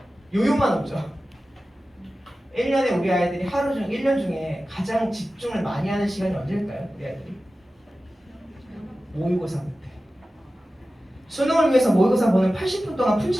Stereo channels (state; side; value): normal; both; correlation 0.95